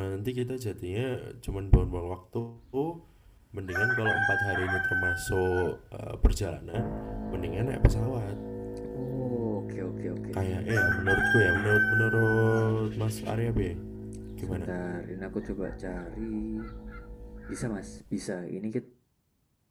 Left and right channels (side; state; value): both; identical; correlation 1.00